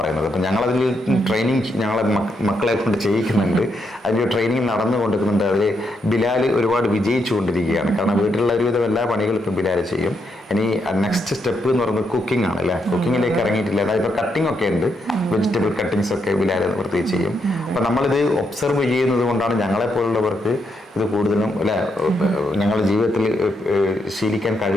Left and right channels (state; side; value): normal; both; correlation 0.79